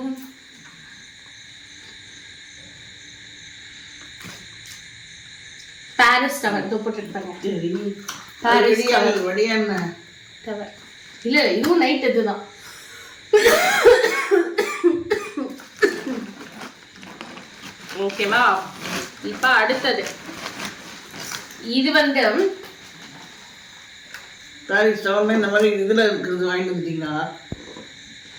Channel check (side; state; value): both; identical; correlation 1.00